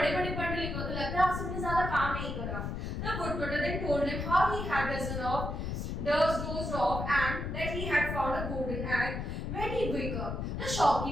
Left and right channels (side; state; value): left; noise; rumble, 4 dB below the sound